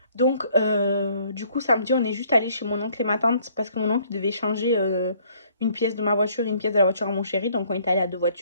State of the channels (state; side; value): inverted; both; correlation -0.62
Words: Donc, du coup, samedi, on est juste allé chez mon oncle et ma tante parce que mon oncle devait changer une pièce de ma voiture et une pièce de la voiture à mon chéri. Donc, on est allé à deux